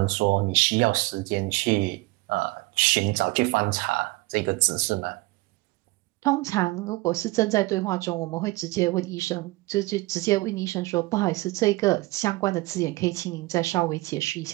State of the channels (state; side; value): quieter; left; 21.6 dB